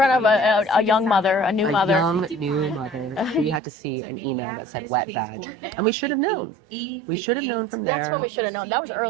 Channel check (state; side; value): drops out; left; at 3.6 s